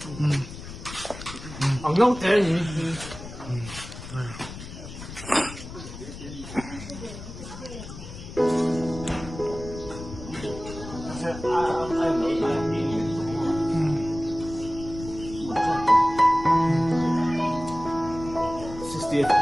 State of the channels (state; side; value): noise; left; rumble, 12 dB below the sound